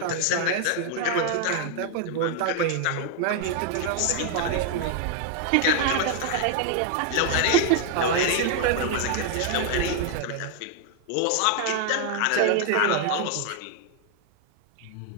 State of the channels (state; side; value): different; both; correlation 0.00